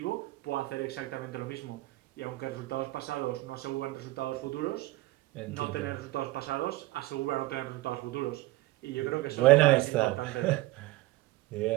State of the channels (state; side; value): quieter; left; 19.4 dB